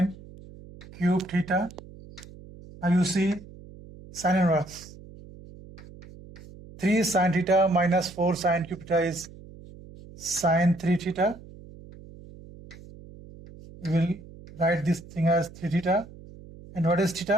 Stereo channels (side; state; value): right; noise; hum, 19 dB below the sound